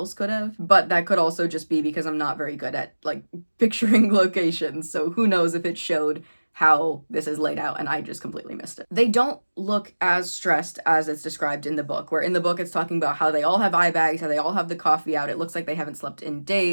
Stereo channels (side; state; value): both; inverted; correlation -1.00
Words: could have. But that could also just be because I'm not very good at, like, picturing locations. So who knows if it showed how this is laid out and I just completely missed it. They don't look as stressed as it's described in the book, where in the book it's talking about how they all have eye bags, how they all have the coffee out. It looks like they haven't slept in